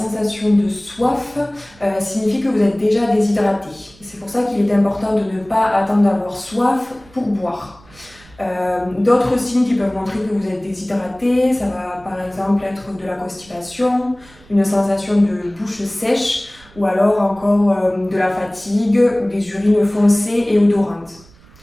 de soif signifie que vous êtes déjà déshydraté. C'est pour ça qu'il est important de ne pas attendre d'avoir soif pour boire. D'autres signes qui peuvent montrer que vous êtes déshydraté, ça va par exemple être de la constipation, une sensation de bouche sèche ou alors encore de la fatigue, des urines foncées et odorantes.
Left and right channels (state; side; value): noise; right; rumble, 26 dB below the sound